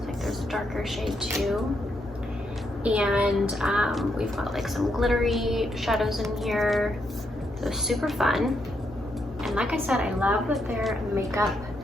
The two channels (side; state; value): both; normal; correlation 0.79